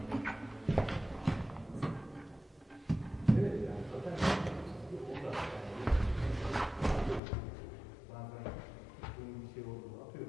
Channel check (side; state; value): right; drops out; at 7.2 s